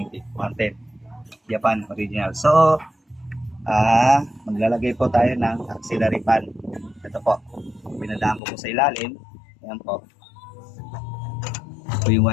110. Japan original. So, maglalagay po tayo ng auxiliary fan. Ito po. Pinadaan ko po sa ilalim. Ayan po. Ito yung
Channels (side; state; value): right; drops out; at 8.4 s